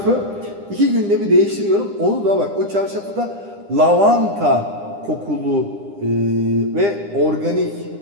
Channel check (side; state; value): left; late; 9.9 ms